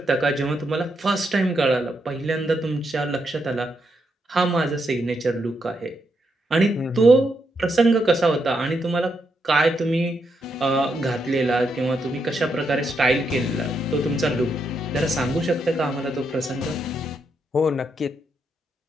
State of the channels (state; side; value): normal; both; correlation 0.80